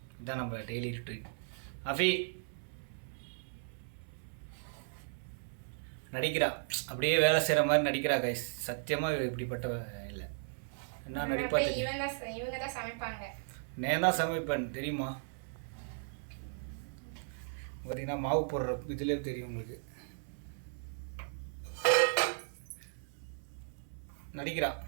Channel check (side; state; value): left; silent; 54 dB below the other